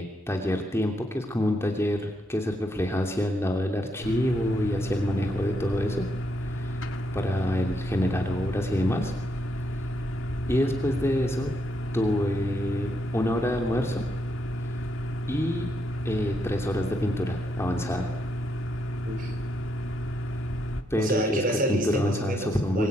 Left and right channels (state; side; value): normal; both; correlation 0.78